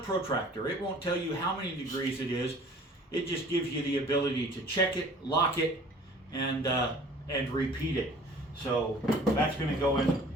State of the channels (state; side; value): normal; both; correlation 0.49